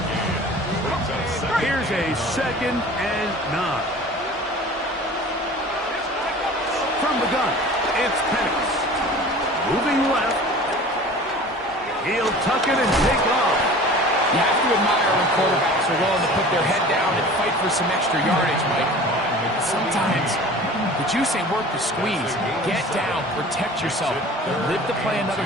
gain. Brings up second. Here's a 2nd and 9. From the gun, it's Penix. Moving left. He'll tuck it and take off. You have to admire when quarterbacks are willing to put their head down and fight for some extra yardage, Mike. Sometimes the juice ain't worth the squeeze. Get down, protect yourself, live to play another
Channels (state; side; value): normal; both; correlation 0.42